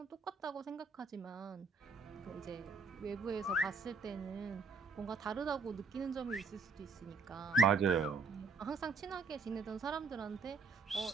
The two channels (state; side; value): quieter; left; 4.2 dB